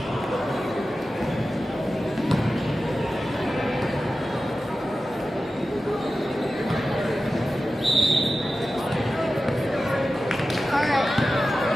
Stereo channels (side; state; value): both; normal; correlation 0.94